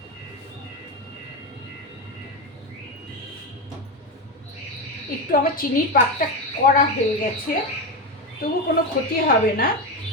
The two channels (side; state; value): both; normal; correlation 0.14